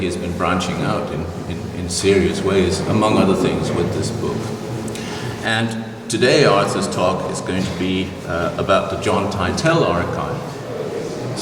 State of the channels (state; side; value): identical; both; correlation 1.00